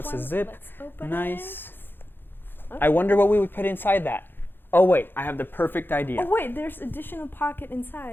a zip. Let's open nice. Okay. I wonder what we would put inside that. Oh wait, I have the perfect idea. Oh wait, there's additional pocket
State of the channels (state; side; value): late; right; 0.10 ms